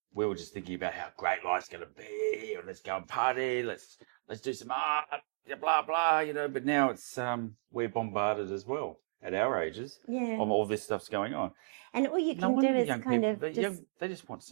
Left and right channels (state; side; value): silent; left; digital silence